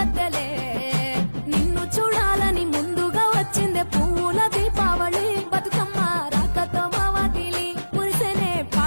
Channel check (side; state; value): both; inverted; correlation -1.00